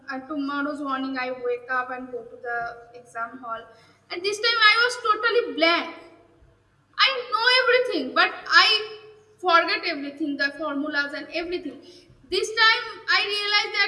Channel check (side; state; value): both; identical; correlation 1.00